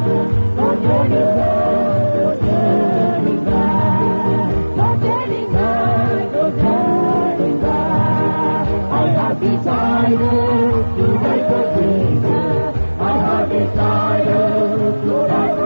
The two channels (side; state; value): both; inverted; correlation -1.00